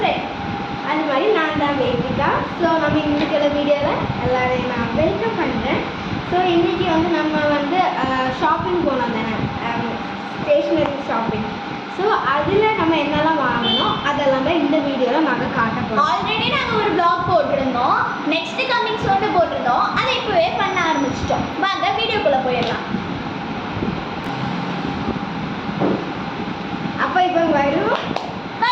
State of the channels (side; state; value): both; identical; correlation 1.00